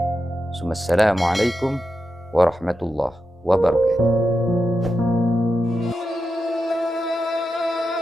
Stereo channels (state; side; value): normal; both; correlation 0.88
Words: Assalamualaikum warahmatullahi wabarakatuh.